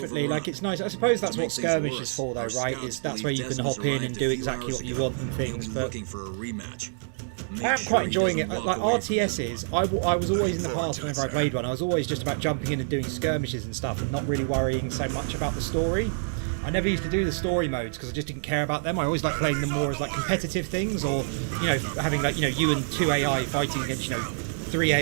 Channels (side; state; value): left; silent; digital silence